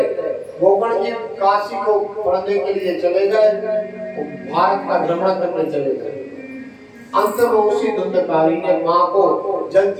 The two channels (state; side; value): identical; both; correlation 1.00